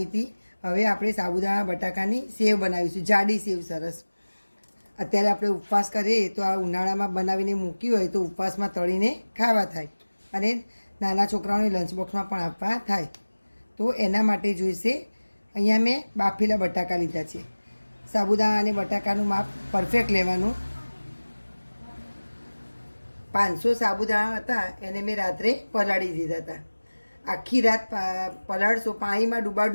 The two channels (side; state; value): both; inverted; correlation -1.00